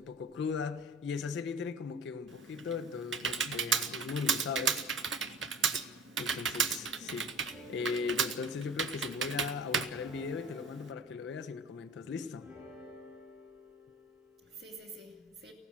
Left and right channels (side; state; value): both; normal; correlation 0.42